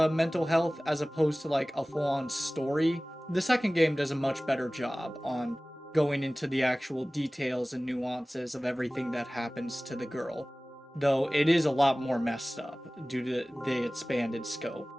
mental health as opposed to like a full-on story. The second game does a much better job on going into the actual details and nuances of everything that happens to the girl, though it is a lot more messed up due to the expanded scope.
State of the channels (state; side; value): normal; both; correlation 0.98